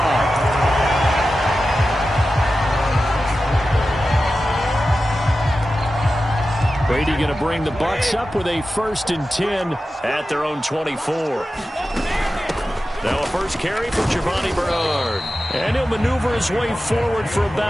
Brady going to bring the Bucs up with a 1st and 10 at their own 24. Now a first carry for Giovanni Bernard. And he'll maneuver his way forward for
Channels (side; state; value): both; normal; correlation 0.93